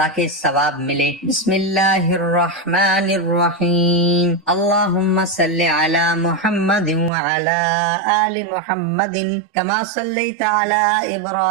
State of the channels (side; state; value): left; drops out; at 7.1 s